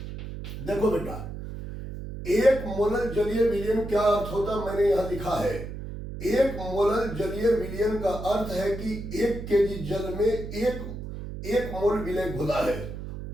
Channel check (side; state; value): right; noise; hum, 9 dB below the sound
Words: देखो बेटा, 1 मोलर जलीय विलयन क्या अर्थ होता है मैंने यहां लिखा है। 1 मोलर जलीय विलयन का अर्थ है कि 1 केजी जल में एक मोल विलय घुला है।